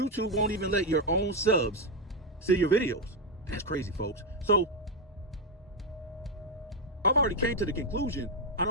won't even let your own subs see your videos. That's crazy, folks. So I've already came to the conclusion I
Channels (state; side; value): normal; both; correlation 0.04